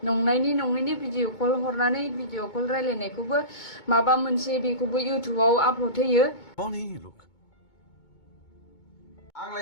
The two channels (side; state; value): right; late; 2.2 ms